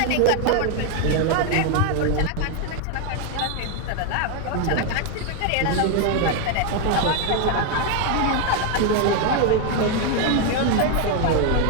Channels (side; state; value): both; different; correlation 0.01